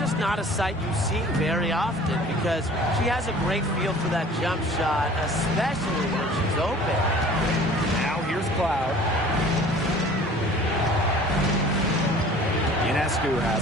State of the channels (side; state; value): both; normal; correlation 0.47